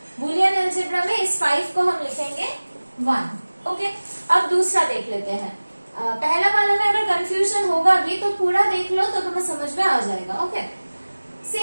बुलियन अलजेब्रा में इस 5 को हम लिखेंगे 1. ओके, अब दूसरा देख लेते हैं. पहला वाला में अगर कंफ्यूजन होगा भी तो पूरा देख लो तो तुम्हें समझ में आ जाएगा. ओके,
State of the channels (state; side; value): inverted; both; correlation -1.00